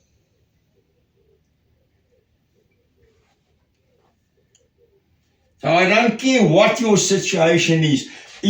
So I don't care what your situation is.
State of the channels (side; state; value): both; identical; correlation 1.00